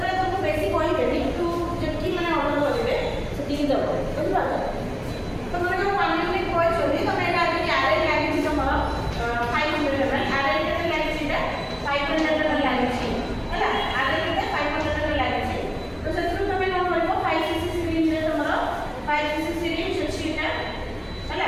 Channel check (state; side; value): identical; both; correlation 1.00